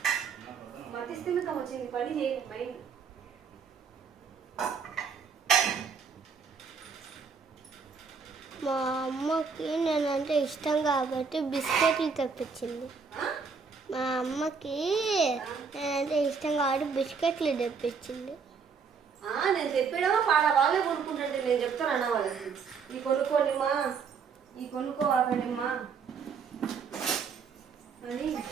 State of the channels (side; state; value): left; quieter; 5.7 dB